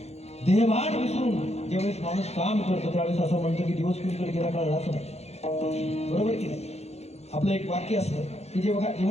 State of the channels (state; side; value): late; right; 0.31 ms